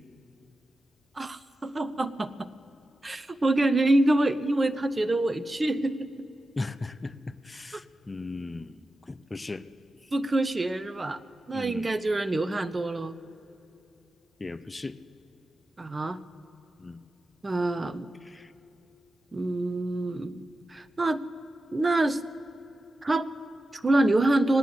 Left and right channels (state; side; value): normal; both; correlation 0.92